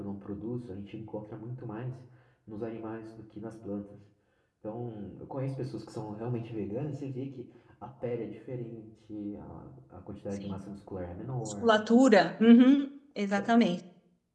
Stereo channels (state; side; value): identical; both; correlation 1.00